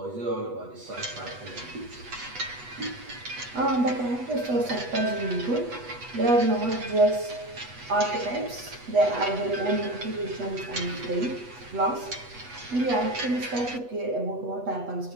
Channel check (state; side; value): late; left; 8.2 ms